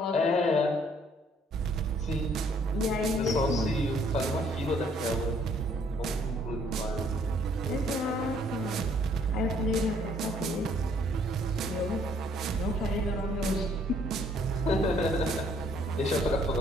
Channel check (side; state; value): both; normal; correlation 0.64